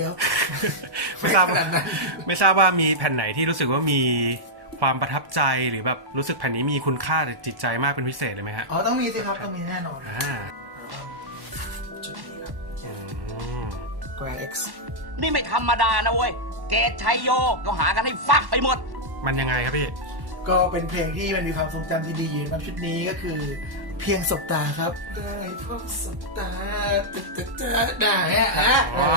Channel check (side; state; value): left; late; 1.1 ms